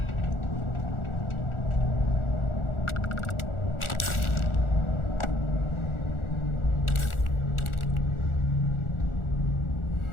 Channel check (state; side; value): late; right; 1.4 ms